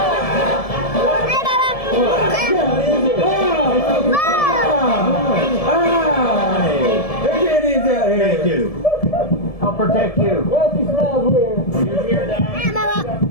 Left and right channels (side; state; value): right; late; 1.7 ms